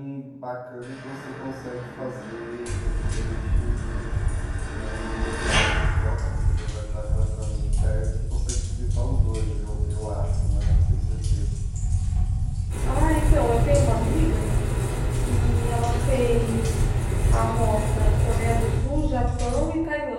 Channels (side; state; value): both; identical; correlation 1.00